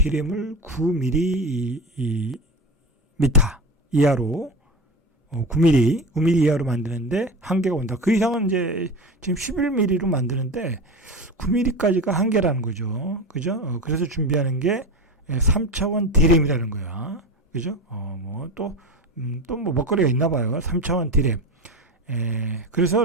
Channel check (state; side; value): normal; both; correlation 0.24